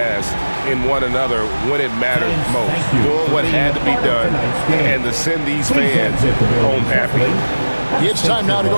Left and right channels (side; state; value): both; inverted; correlation -1.00